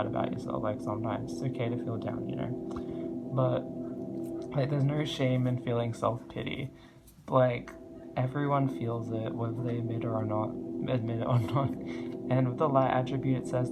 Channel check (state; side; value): identical; both; correlation 1.00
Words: about yourself. Like sometimes it's okay to feel down, you know. But like there's no shame in feeling self-pity. Like everyone feels it, whether they admit it or not. And with the light attribute, it